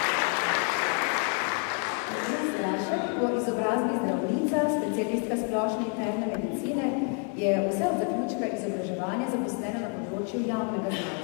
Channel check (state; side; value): quieter; right; 38.3 dB